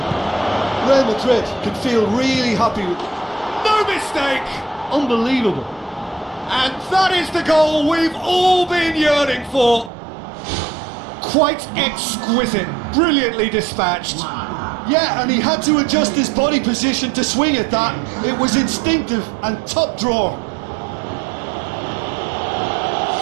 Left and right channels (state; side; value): drops out; left; at 9.9 s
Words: Real Madrid can feel really happy with... No mistake! Unbelievable. And that is the goal we've all been yearning for. Quite exquisite, brilliantly dispatched. Yeah, and he had to adjust his body position to swing at that. It was instinctive and top drawer.